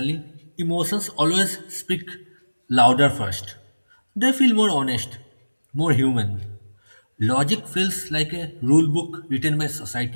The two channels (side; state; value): both; inverted; correlation -1.00